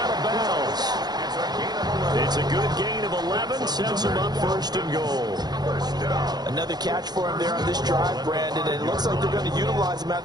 of bounds. It's a good gain of 11, sets him up 1st and goal. Another catch for him there on this drive, Brandon, and it looks like they're going to utilize him out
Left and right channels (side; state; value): left; late; 0.20 ms